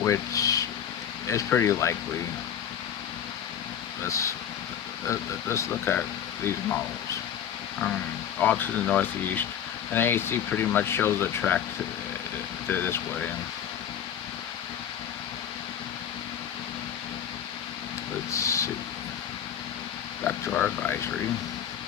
which is pretty likely. Let's look at these models. All to the northeast, and AHC pretty much shows the track to this way. Let's see. Back to our advisory.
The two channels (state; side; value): quieter; right; 9.1 dB